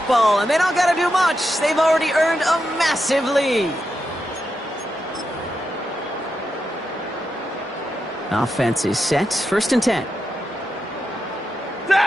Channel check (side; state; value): both; normal; correlation 0.86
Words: and they don't got to do much. They've already earned a massive lead. Offense is set. 1st and 10.